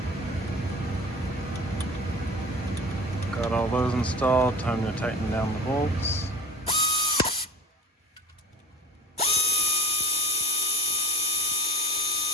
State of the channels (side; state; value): both; normal; correlation 0.41